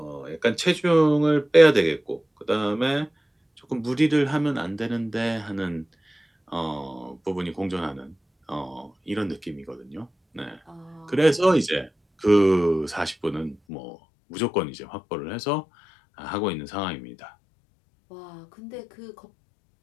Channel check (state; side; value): drops out; right; at 13.6 s